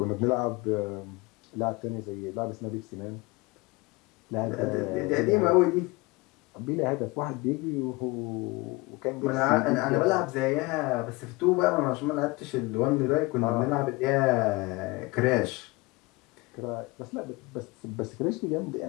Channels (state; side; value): quieter; right; 23.6 dB